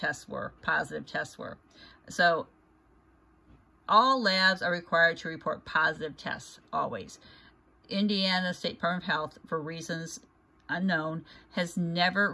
were, positive tests were. So all labs are required to report positive tests, always. Indiana State Department of Health, for reasons unknown, has never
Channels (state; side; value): identical; both; correlation 1.00